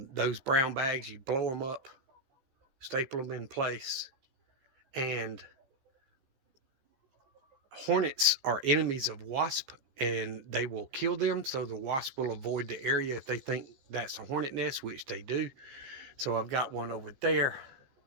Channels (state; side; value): late; left; 15 ms